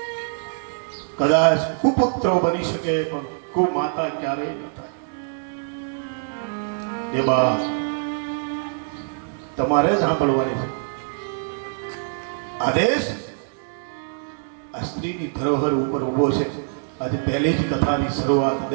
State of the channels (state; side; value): silent; left; digital silence